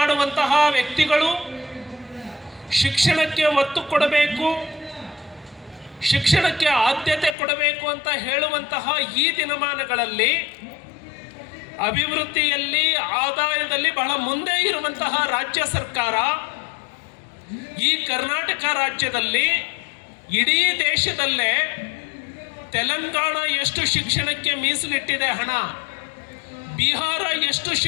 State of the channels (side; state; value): right; drops out; at 7.4 s